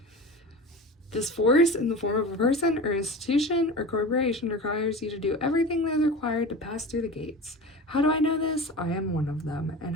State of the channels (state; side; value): normal; both; correlation 0.32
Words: This force, in the form of a person or institution or corporation, requires you to do everything that is required to pass through the gates. How do I know this? I am one of them, and